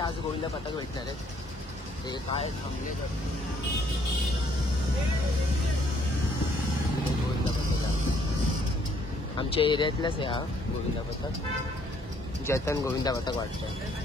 गोविंदा पथक भेटणार आहेत. ते काय थांबले गोविंदा पथक आमच्या एरियातलाच आहे हा गोविंदा पथक. जतन गोविंदा पथक वाटतं.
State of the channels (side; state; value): both; normal; correlation 0.66